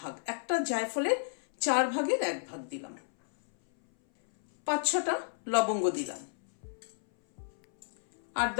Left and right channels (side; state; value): right; silent; 57 dB below the other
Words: একটা জায়ফলের 4 ভাগের 1 ভাগ দিলাম। 5-6টা লবঙ্গ দিলাম, আর